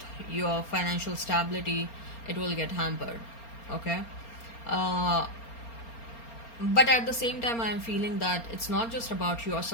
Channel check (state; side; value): late; right; 4.3 ms